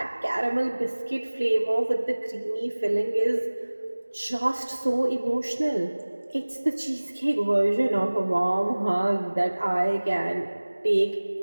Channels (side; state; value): both; inverted; correlation -1.00